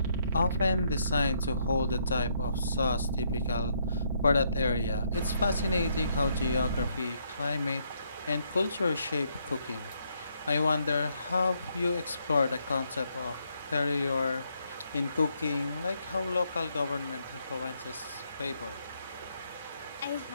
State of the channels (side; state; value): both; inverted; correlation -0.73